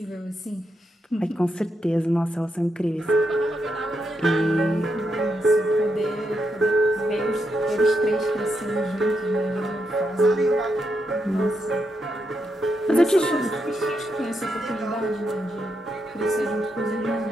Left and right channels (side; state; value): both; normal; correlation 0.82